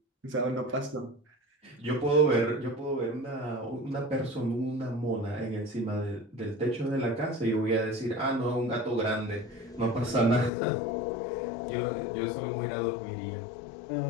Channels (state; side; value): drops out; right; at 10.5 s